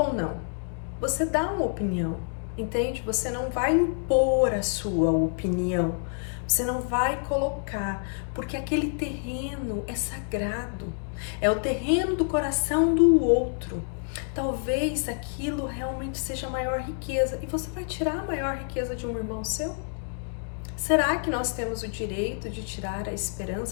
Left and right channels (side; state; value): right; silent; digital silence